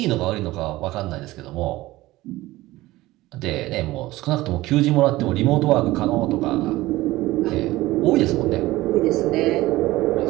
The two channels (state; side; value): quieter; left; 17.9 dB